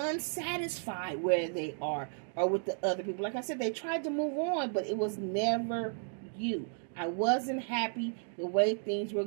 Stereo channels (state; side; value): silent; left; 55 dB below the other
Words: where they are or with the other people. Like I said, they tried to move on, but it was never you. I wasn't happy the way things were